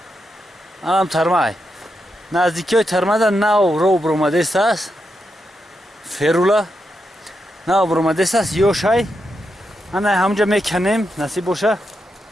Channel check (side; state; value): both; normal; correlation 0.85